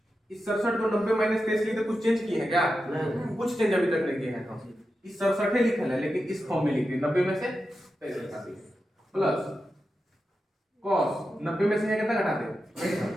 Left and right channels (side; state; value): both; normal; correlation 0.90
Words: इस 67 को 90 माइनस 23 लिखते कुछ चेंज किए हैं क्या? नहीं, कुछ चेंज अभी तक नहीं किए हैं हम। इस 67 लिखा है लेकिन इस फॉर्म में लिखे 90 में से 23 घटा दिए, प्लस कॉस 90 में से कितना घटा दे?